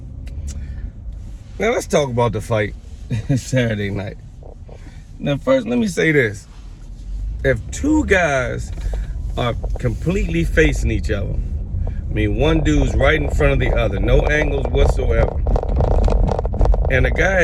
Now, let's talk about the fight Saturday night. Now, first, let me say this. If two guys are completely facing each other, I mean, one dude's right in front of the other, no angles whatsoever, and the guy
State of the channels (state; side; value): identical; both; correlation 1.00